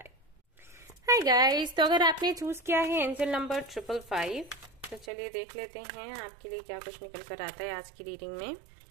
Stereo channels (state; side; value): drops out; left; at 5.1 s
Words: Hi guys, तो अगर आपने चूज किया है एंजल नंबर 555, तो चलिए देख लेते हैं आपके लिए क्या कुछ निकल कर आता है आज की रीडिंग में।